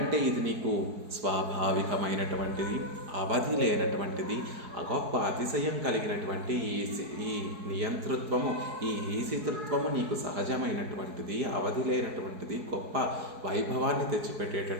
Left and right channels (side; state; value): left; late; 4.7 ms